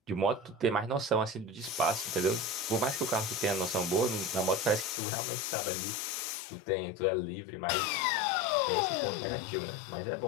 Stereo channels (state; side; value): drops out; right; at 5.0 s